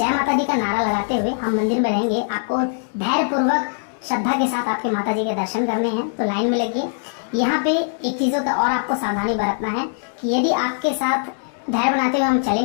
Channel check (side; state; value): right; silent; digital silence